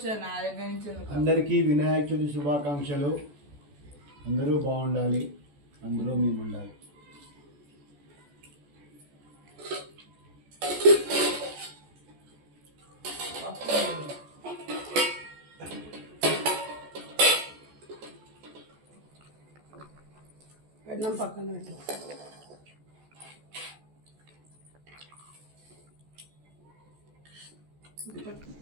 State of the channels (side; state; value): left; late; 14 ms